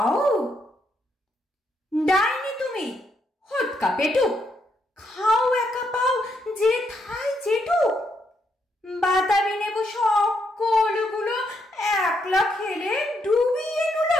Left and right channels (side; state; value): both; normal; correlation 0.77